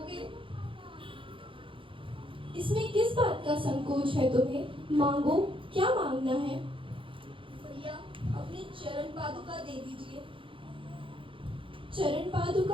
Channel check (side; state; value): left; late; 0.25 ms